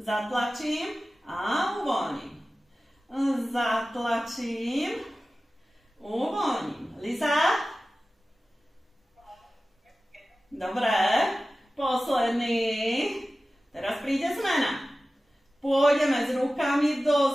a uvoľním. Zatlačím, uvoľním. Liza? Dobre, posledný. Teraz príde zmena. Pôjdeme s rukami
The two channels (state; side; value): normal; both; correlation 0.96